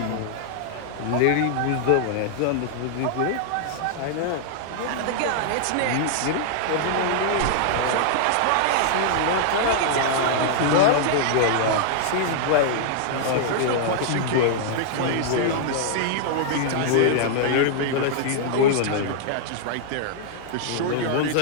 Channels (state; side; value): different; both; correlation -0.01